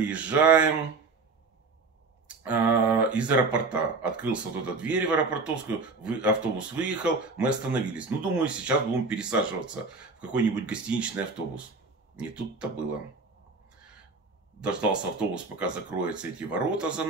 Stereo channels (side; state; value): left; quieter; 4.0 dB